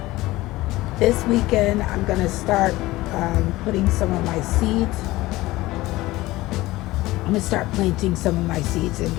This weekend, I'm going to start putting some of my seeds. I'm going to start planting some of my seeds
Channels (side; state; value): right; quieter; 18.5 dB